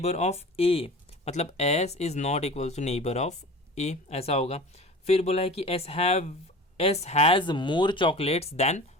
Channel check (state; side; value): normal; both; correlation 0.38